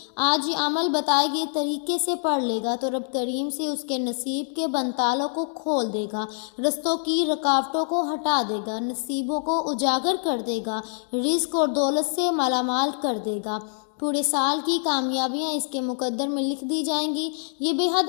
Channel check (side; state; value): right; silent; digital silence